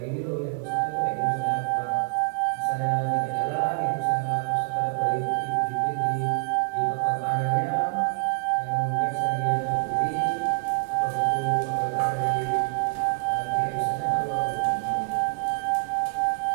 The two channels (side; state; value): left; quieter; 36.3 dB